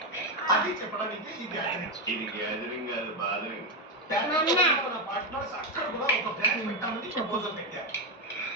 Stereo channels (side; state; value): both; normal; correlation 0.09